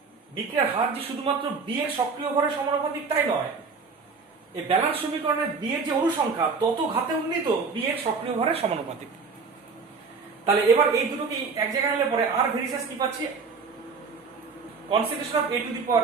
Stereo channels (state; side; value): quieter; left; 4.9 dB